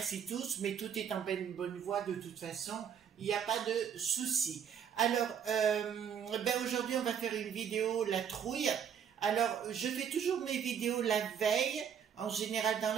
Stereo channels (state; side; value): quieter; left; 8.1 dB